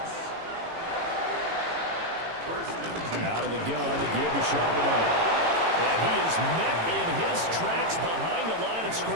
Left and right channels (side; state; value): left; late; 18 ms